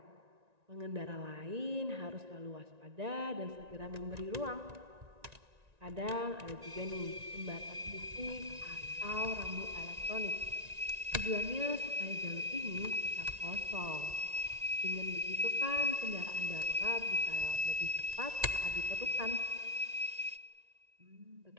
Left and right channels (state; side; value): late; left; 1.9 ms